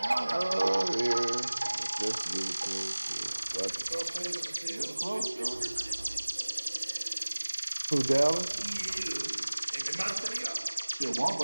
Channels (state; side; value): inverted; both; correlation -1.00